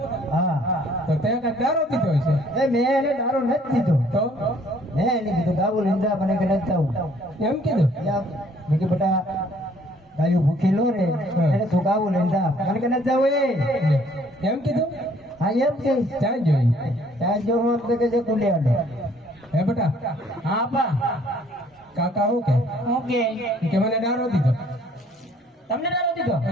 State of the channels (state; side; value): normal; both; correlation 0.61